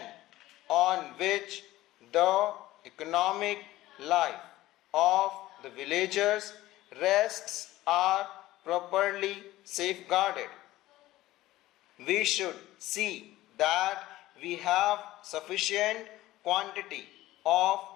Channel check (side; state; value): right; quieter; 16.4 dB